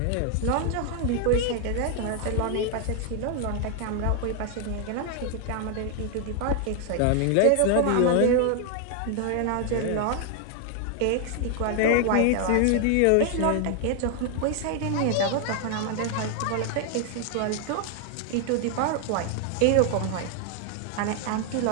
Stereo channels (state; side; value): different; both; correlation 0.00